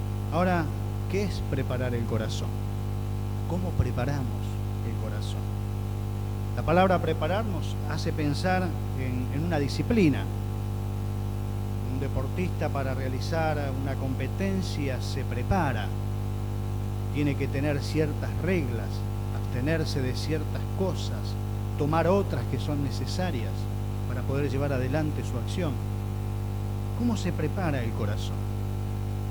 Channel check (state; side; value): identical; both; correlation 1.00